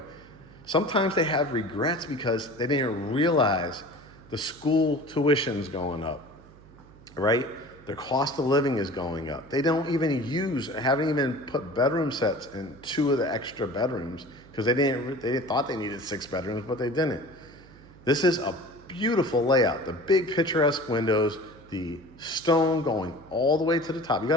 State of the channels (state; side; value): noise; right; hum, 23 dB below the sound